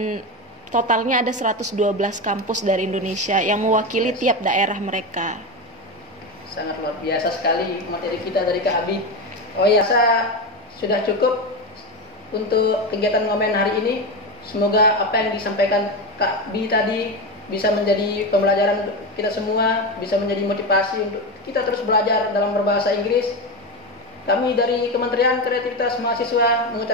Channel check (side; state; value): both; normal; correlation 0.17